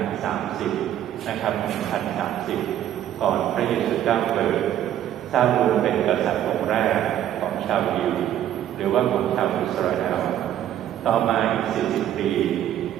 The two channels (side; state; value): left; quieter; 11.3 dB